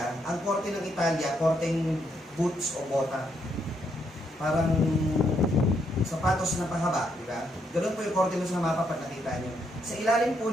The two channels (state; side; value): normal; both; correlation 0.76